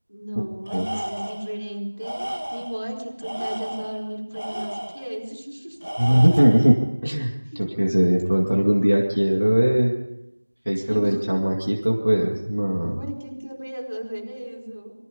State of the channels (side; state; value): both; inverted; correlation -1.00